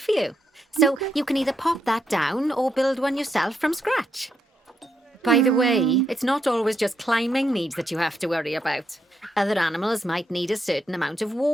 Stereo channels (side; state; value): both; normal; correlation 0.80